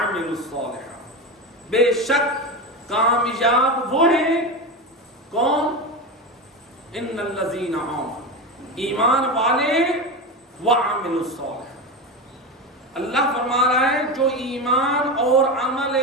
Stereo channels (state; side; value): normal; both; correlation 0.20